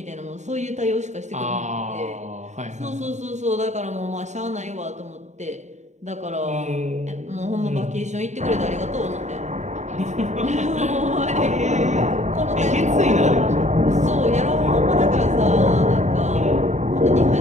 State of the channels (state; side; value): late; left; 0.34 ms